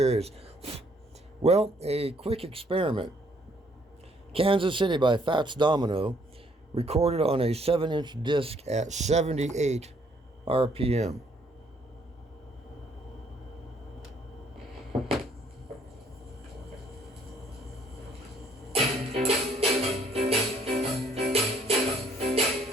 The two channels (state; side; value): normal; both; correlation 0.65